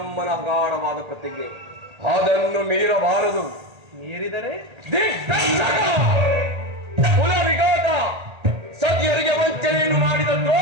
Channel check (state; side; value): late; left; 1.8 ms